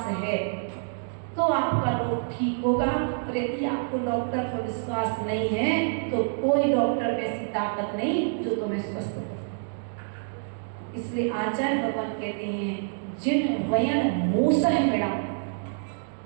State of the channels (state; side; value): silent; left; digital silence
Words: है तो आपका रोग ठीक होगा, और यदि आपको डॉक्टर पर विश्वास नहीं है तो कोई डॉक्टर में ऐसी ताकत नहीं जो तुम्हें स्वस्थ करे। इसलिए आचार्य भगवान कहते हैं जिन वयन मूसह मिड़ा,